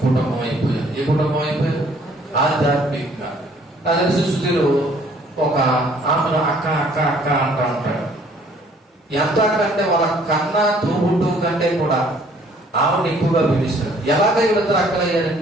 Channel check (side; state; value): both; normal; correlation 0.59